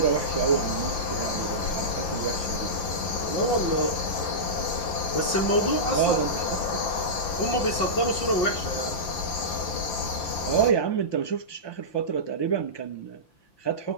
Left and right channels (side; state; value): right; late; 5.8 ms